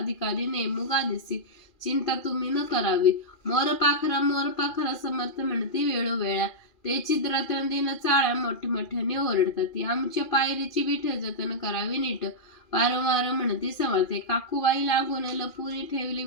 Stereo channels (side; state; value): right; late; 2.4 ms